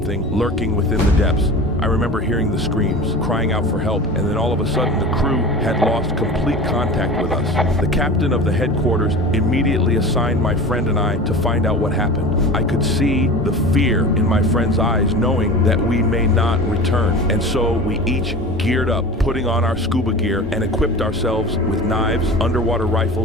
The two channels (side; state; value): both; normal; correlation 0.34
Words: lurking within the depths. I remember hearing the screams, crying out for help, and then all of a sudden the crew had lost complete contact with us. The captain of the headquarters immediately assigned my friend and I to find out what happened. I could see the fear in my friend's eyes, knowing that we may not return. And so we each geared up, putting on our scuba gear and equipped ourselves with knives, underwater